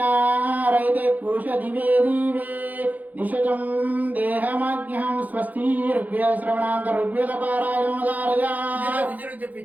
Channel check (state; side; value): late; left; 0.080 ms